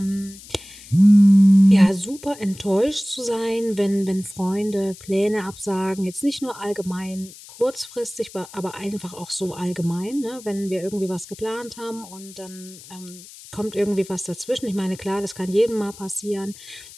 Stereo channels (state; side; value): noise; left; hiss, 18 dB below the sound